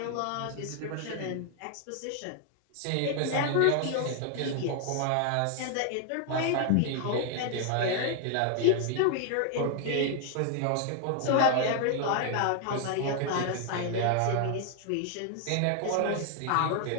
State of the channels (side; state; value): both; different; correlation 0.00